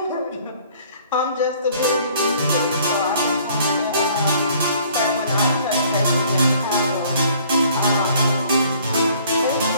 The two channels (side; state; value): both; inverted; correlation -0.57